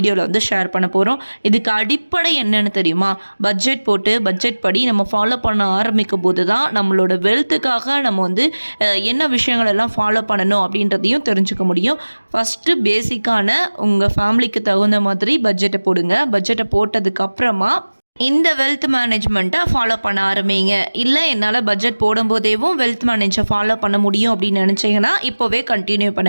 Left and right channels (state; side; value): inverted; both; correlation -1.00